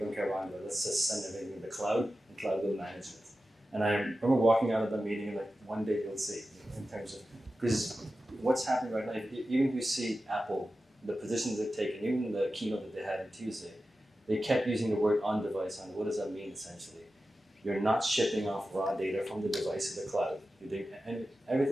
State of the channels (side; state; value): both; normal; correlation 0.93